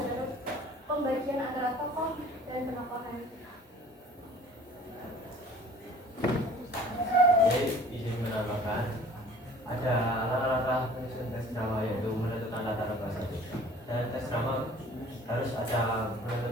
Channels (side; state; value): both; normal; correlation 0.48